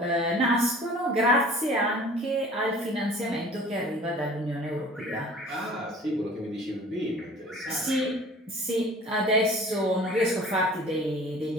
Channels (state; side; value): normal; both; correlation 0.46